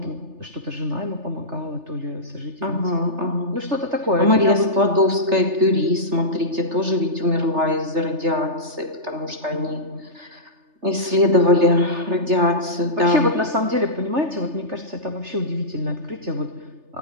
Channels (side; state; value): left; late; 3.3 ms